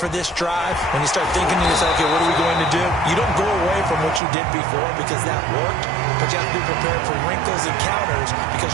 this drive, when you start thinking to yourself, okay, what are we going to do? You don't go away from what you did before because that worked, but you have to be prepared for wrinkles and counters because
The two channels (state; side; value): drops out; left; at 4.2 s